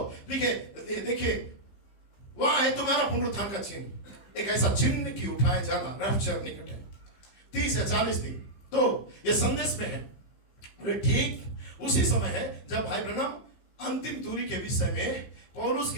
देखिए वहां है तुम्हारा पुनरुत्थान का चिन्ह, एक ऐसा चिन्ह कि उठाए जाना रैप्चर निकट है। 30 या 40 दिन तो ये संदेश में है। ठीक उसी समय है जब भाई ब्रैनम अंतिम दूरी के विषय में पौलुस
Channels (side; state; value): right; late; 15 ms